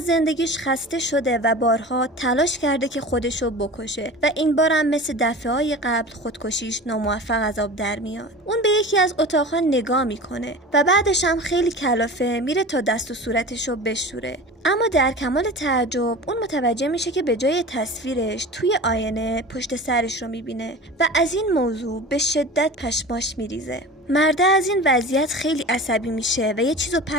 زندگیش خسته شده و بارها تلاش کرده که خودشو بکشه و این بارم مثل دفعه‌های قبل خودکشیش ناموفق از آب در میاد. اون به یکی از اتاقها نگاه میکنه و بعدش هم خیلی کلافه میره تا دست و صورتشو بشوره. اما در کمال تعجب اون متوجه میشه که به جای تصویرش توی آینه پشت سرش رو میبینه و از این موضوع به شدت پشماش میریزه. مرده از این وضعیت خیلی عصبی میشه و یه چیزو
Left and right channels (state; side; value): normal; both; correlation 0.35